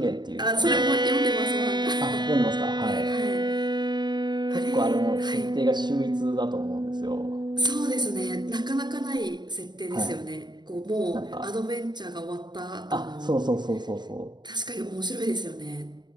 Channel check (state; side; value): late; left; 0.21 ms